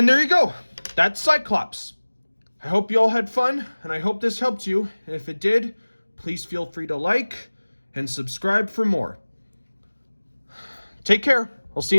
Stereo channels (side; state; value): both; inverted; correlation -1.00